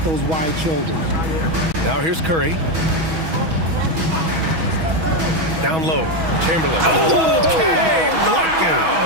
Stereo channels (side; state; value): left; late; 6.2 ms